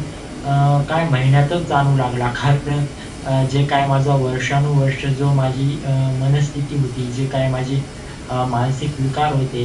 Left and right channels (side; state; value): both; identical; correlation 1.00